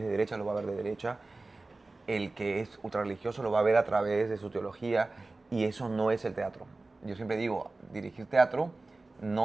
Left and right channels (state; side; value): quieter; left; 3.3 dB